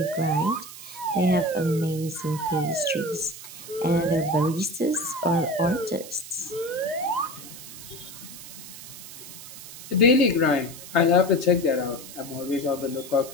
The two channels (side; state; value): right; noise; hiss, 14 dB below the sound